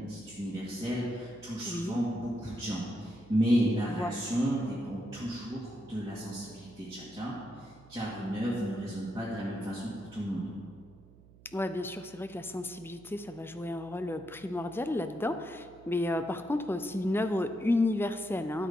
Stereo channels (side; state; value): right; noise; hum, 23 dB below the sound